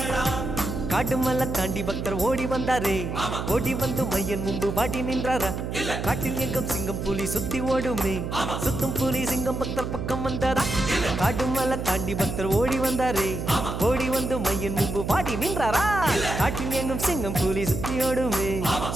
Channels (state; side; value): noise; right; hum, 4 dB below the sound